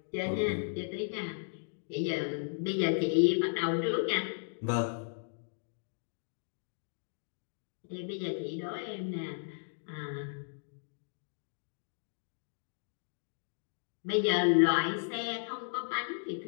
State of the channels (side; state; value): right; silent; digital silence